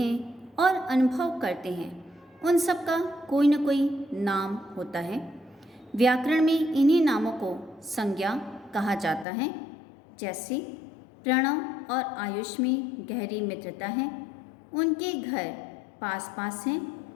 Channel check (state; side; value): drops out; right; at 9.2 s